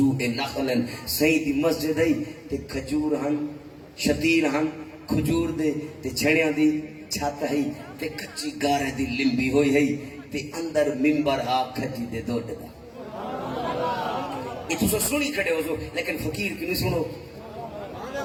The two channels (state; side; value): identical; both; correlation 1.00